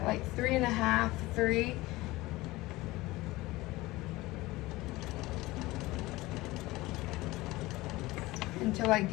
like 3.5, 3. Until I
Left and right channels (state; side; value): quieter; right; 19.7 dB